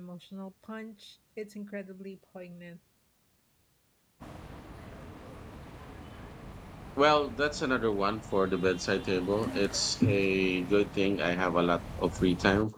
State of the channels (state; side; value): identical; both; correlation 1.00